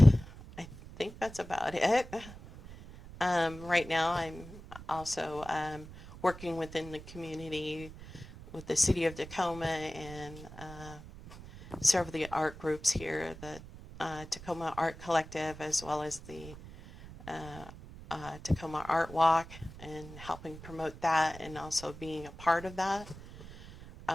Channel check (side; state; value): right; noise; rumble, 15 dB below the sound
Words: I think that's about it. Right now, I'm also working within the community with the city of Tacoma and several of the art groups here, the Tacoma Art Collective, as well as the Tacoma Art Walk, and helping promote that, and also being a part of that.